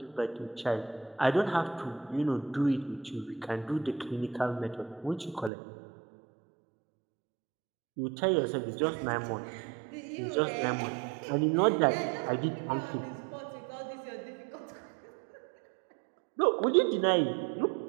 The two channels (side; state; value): left; drops out; at 5.5 s